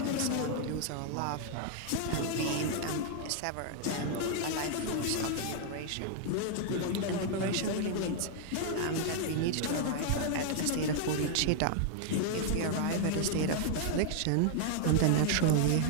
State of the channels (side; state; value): both; different; correlation 0.00